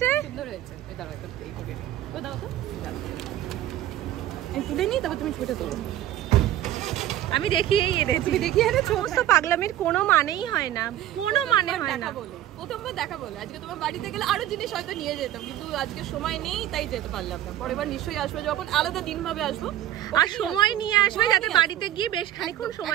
সুন্দর হয়েছে। এই দাঁড়াও, একটা এই করে তো দাও তো, এই তুলে নি, তারপর তুমি ছবিটা তোলো। আমি দেখিয়েই এনেছি। তুমি দেখিয়ে এনেছো? সমস্ত পাগলামির কোনো মানেই হয় না, কোনো মানে হয় না। প্রথমবার দেখা বলে আজকে তোমার বাড়িতে গেলে আরো জিনিস হয়তো নিয়ে যেতাম, কিন্তু আজকে সময় নেই তাই যেতে পারলাম না। পরের বার নিশ্চয়ই আসবে, যখন আলাদা দিন ভাবে আসবো, আর সময় নিয়ে আসবে যাতে বাড়িতে গিয়ে বেশ খানিকক্ষণ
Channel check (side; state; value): left; quieter; 12.9 dB